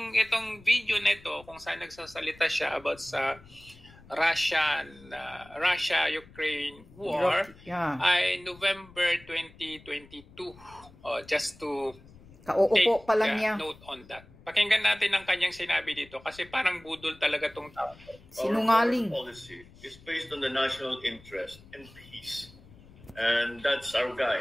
video nito kung saan nagsasalita siya about sa Russia-Ukraine war ay November 2022. Just to Kauupo pa lang niya. Note on that. Pakinggan natin ang kanyang sinabi dito kasi parang budol talaga tong tao. Sinungaling. Our policy is based on the national interest and peace. And that's our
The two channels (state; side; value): noise; left; rumble, 23 dB below the sound